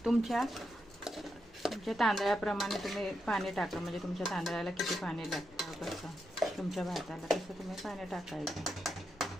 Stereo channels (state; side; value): normal; both; correlation 0.84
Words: तुमच्या तांदळाप्रमाणे तुम्ही पाणी टाका. म्हणजे तुमच्या तांदळाला किती पाणी लागतं, कसं तुमच्या भाताला तसं तुम्ही पाणी टाकायचं.